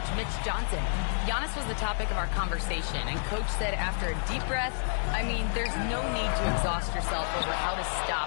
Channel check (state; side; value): silent; right; digital silence